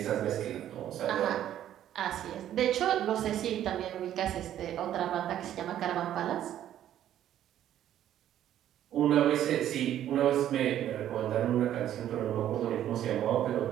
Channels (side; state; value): left; quieter; 11.4 dB